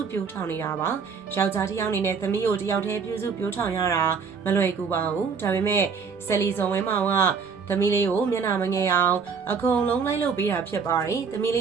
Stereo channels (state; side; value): quieter; left; 5.8 dB